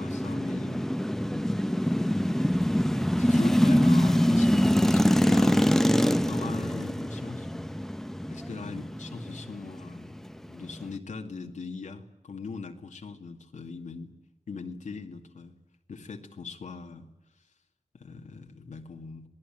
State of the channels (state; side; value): normal; both; correlation 0.98